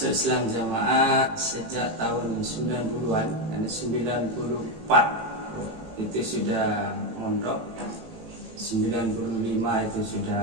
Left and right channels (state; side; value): late; left; 18 ms